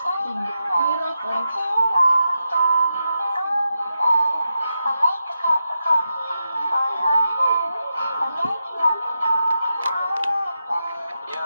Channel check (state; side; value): inverted; both; correlation -0.88